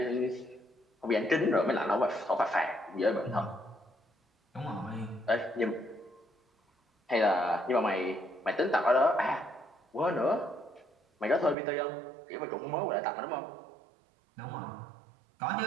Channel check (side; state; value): left; drops out; at 11.6 s